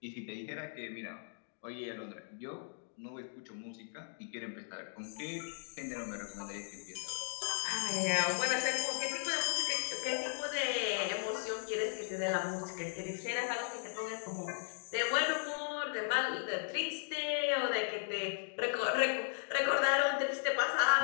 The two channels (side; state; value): right; silent; digital silence